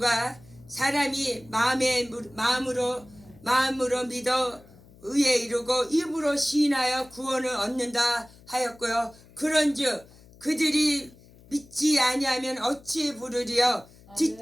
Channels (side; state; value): left; noise; hum, 24 dB below the sound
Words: 사람이 마음으로 믿어 의에 이르고 입으로 시인하여 구원을 얻는다 하였고요. 그런즉 그들이 믿지 아니하면 어찌 부르리요?